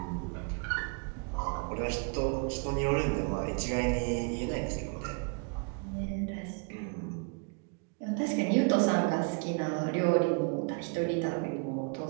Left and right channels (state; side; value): quieter; left; 35.1 dB